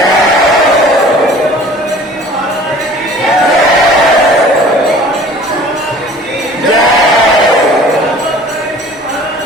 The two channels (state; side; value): normal; both; correlation 0.48